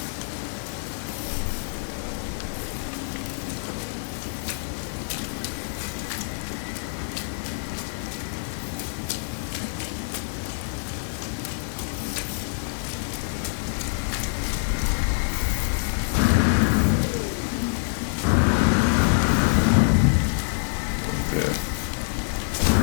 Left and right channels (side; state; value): right; silent; digital silence